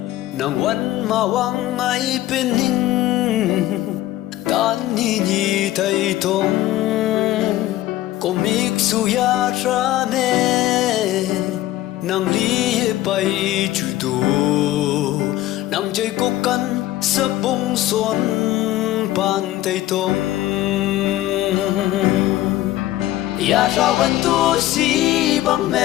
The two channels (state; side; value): quieter; right; 14.8 dB